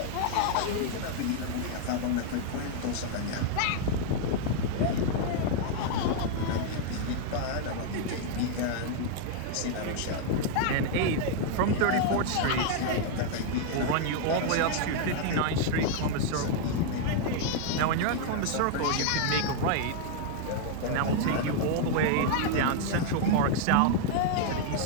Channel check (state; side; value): different; both; correlation 0.00